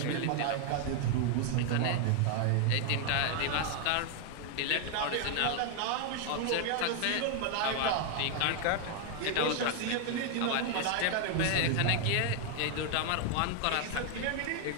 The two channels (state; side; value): different; both; correlation 0.00